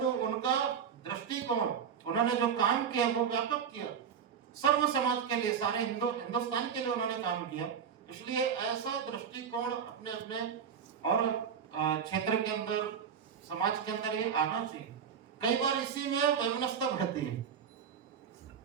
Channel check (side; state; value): left; quieter; 7.5 dB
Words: उनका दृष्टिकोण, उन्होंने जो काम किया वो व्यापक किया, सर्व समाज के लिए, सारे हिंदुस्तान के लिए उन्होंने काम किया। इसलिए ऐसा दृष्टिकोण अपने अपने और क्षेत्र के अंदर, समाज के अंदर ये आना चाहिए। कई बार इसी में वैमनस्यता बढ़ती है,